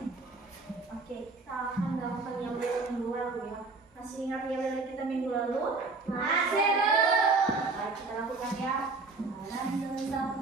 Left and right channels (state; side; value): quieter; left; 3.8 dB